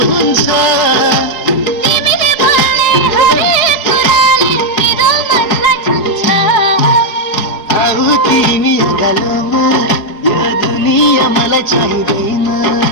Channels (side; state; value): right; late; 4.8 ms